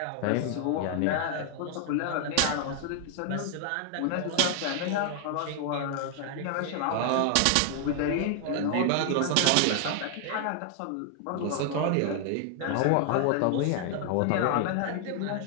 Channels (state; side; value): different; both; correlation 0.00